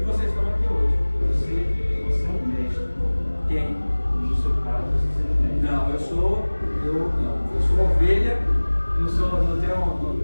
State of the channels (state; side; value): inverted; both; correlation -1.00